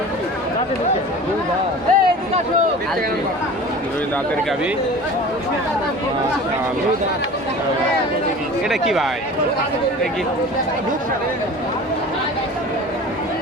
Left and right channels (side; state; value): both; normal; correlation 0.39